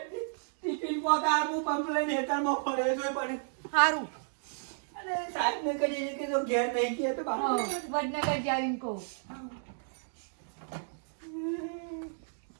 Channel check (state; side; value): silent; left; digital silence